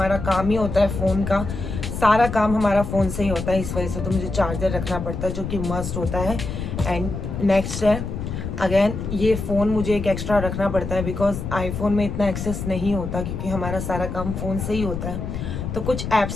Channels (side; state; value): left; noise; rumble, 5 dB below the sound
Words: काम ही होता है फ़ोन का, सारा काम हमारा फ़ोन से ही होता है, इस वजह से तो मुझे चार्जर रखना पड़ता है जो कि मस्ट होता है। एंड नेक्स्ट है अगेन ये फ़ोन मुझे एक एक्स्ट्रा रखना पड़ता है बिकॉज आईफोन में इतना एक्सेस नहीं होता क्योंकि हमारा सारा काम फ़ोन से ही होता है। तो कुछ